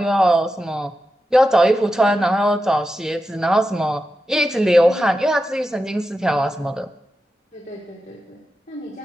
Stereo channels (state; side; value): normal; both; correlation 0.90